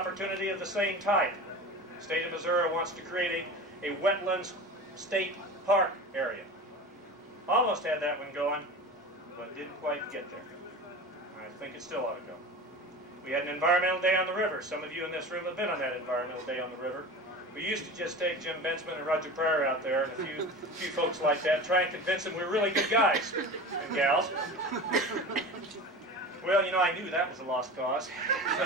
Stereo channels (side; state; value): both; normal; correlation 0.33